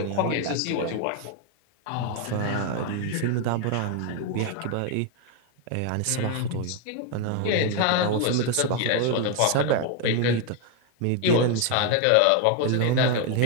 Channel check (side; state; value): both; different; correlation 0.01